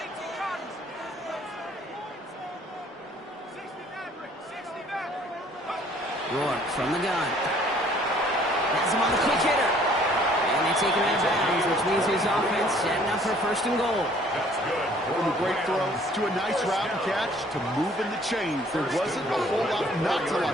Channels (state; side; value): normal; both; correlation 0.58